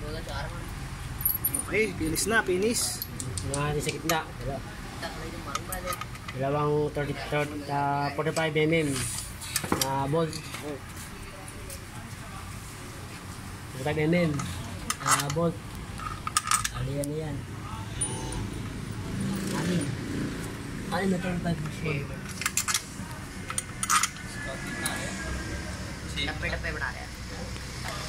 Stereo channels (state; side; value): identical; both; correlation 1.00